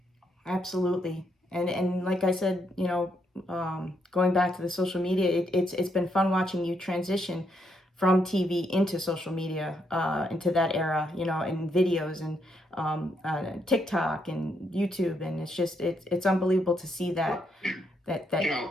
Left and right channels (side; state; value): both; normal; correlation 0.77